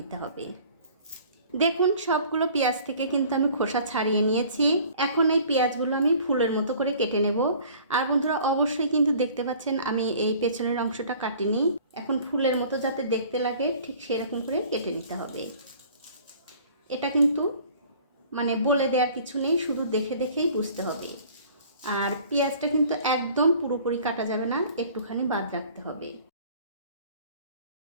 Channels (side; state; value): both; inverted; correlation -0.50